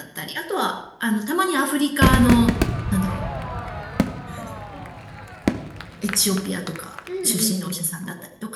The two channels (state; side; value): identical; both; correlation 1.00